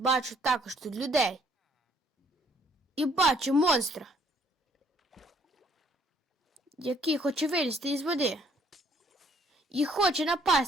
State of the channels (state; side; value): normal; both; correlation 0.64